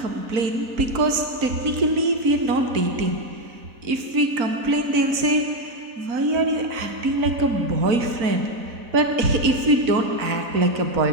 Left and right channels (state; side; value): late; left; 4.0 ms